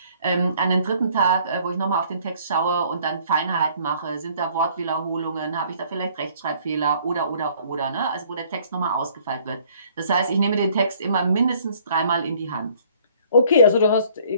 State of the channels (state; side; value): inverted; both; correlation -0.58